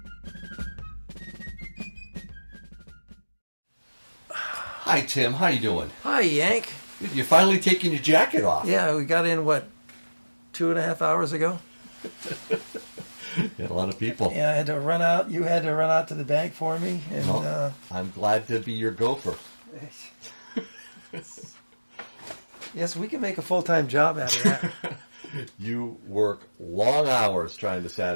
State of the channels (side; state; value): both; inverted; correlation -1.00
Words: Hi, Tim. How you doing? Hi, Yank. You're finally taking your jacket off. Yeah, we got in, what, 2.5 hours ago? Yeah, a lot of people. Yeah, I had to run out. You had to run out to the bank for me. And Well, I'm glad to be your gopher. yes, we can make a full-time job out of that. You work long hours trying to